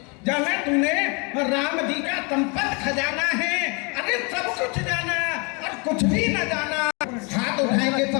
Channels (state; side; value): quieter; right; 32.1 dB